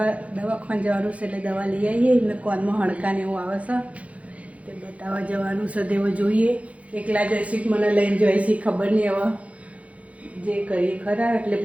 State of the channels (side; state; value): left; late; 0.065 ms